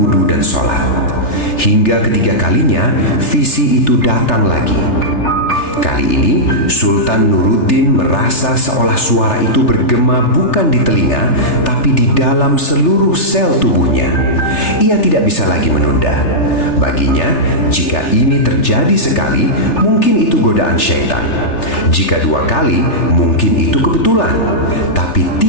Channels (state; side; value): late; right; 3.3 ms